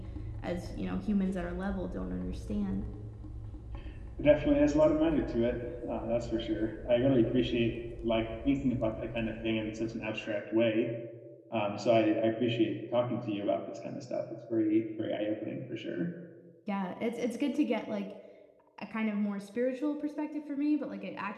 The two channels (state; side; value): identical; both; correlation 1.00